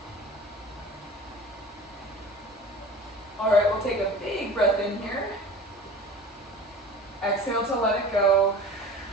All right, we'll take a big breath in here. Exhale to let it go.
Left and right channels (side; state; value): both; normal; correlation 0.39